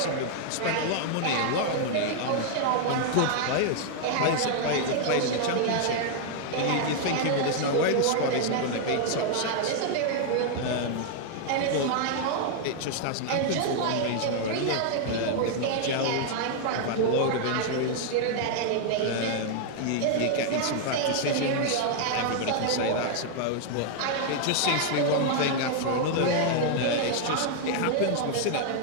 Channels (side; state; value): both; different; correlation 0.00